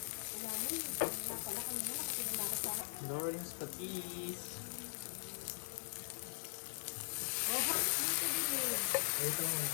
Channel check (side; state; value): right; silent; digital silence